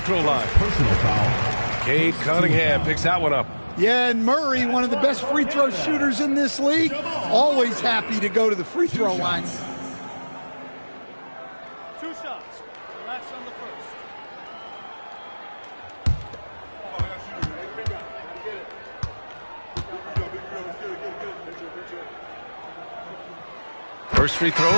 line. Personal foul. Cade Cunningham picks that one up. Yeah, and Murray, one of the best free throw shooters in this league, always happy to go to the free throw line. 2 shots. Relax on the first. First free throw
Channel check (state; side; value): inverted; both; correlation -1.00